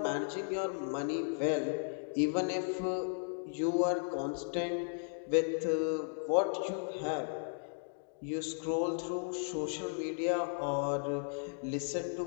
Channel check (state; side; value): silent; right; digital silence